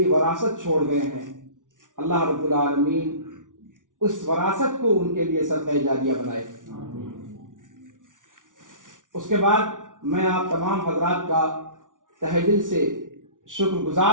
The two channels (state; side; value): late; left; 0.88 ms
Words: وراثت چھوڑ گئے ہیں، اللہ رب العالمین اس وراثت کو ان کے لیے صدقہ جاریہ بنائے. اس کے بعد میں آپ تمام حضرات کا تہہ دل سے شکر